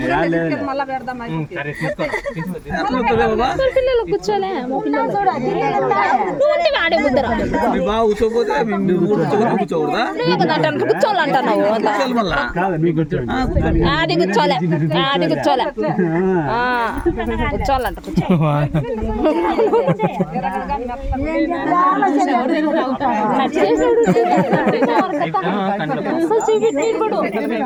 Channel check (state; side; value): identical; both; correlation 1.00